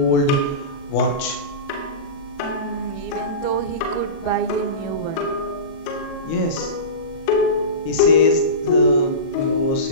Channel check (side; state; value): right; late; 37 ms